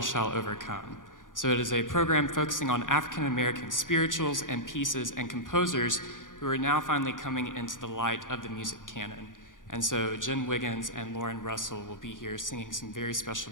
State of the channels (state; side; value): late; right; 0.88 ms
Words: Shall Overcome. So it is a program focusing on African-American spirituals and pieces and composers who are now finally coming into the light of the music canon. And so Jen Wiggins and Lauren Russell will be here singing some very